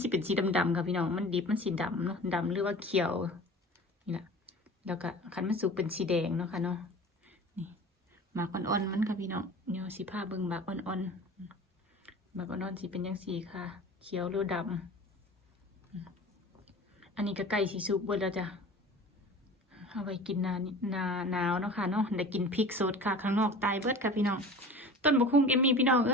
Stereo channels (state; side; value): normal; both; correlation 0.39